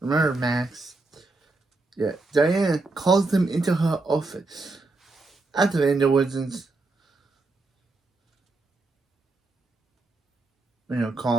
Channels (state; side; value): quieter; left; 3.3 dB